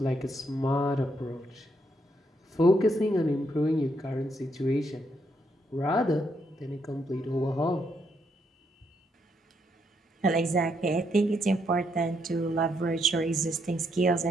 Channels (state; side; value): normal; both; correlation 0.76